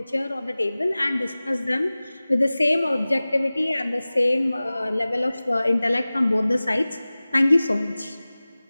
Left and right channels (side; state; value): both; inverted; correlation -0.98